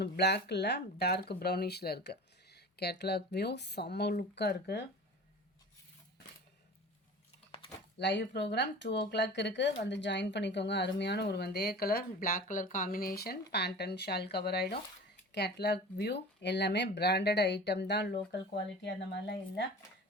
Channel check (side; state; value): both; normal; correlation 0.38